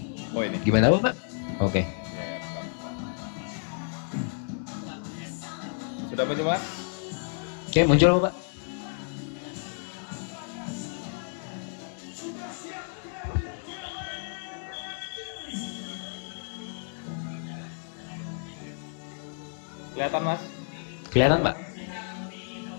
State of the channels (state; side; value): silent; right; 57 dB below the other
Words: Oh ini. Gimana Bapak? Oke. Ya, bentar. Sudah muncul Mas? Oke, muncul Bapak. Kelihatan Mas? Kelihatan Pak?